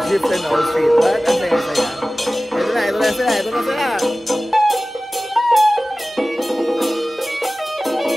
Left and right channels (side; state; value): both; normal; correlation 0.97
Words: Jeep and all street. But ang saya-saya. Ito na sila.